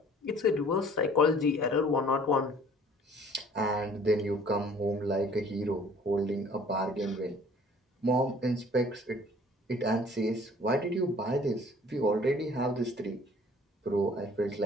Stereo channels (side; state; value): both; normal; correlation 0.53